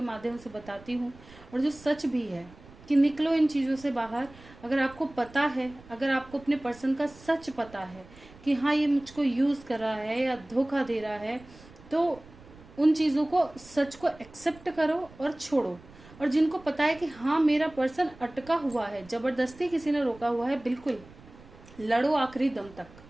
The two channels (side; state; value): right; noise; rumble, 22 dB below the sound